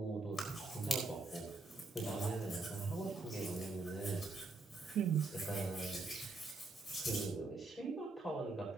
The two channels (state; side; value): quieter; left; 3.4 dB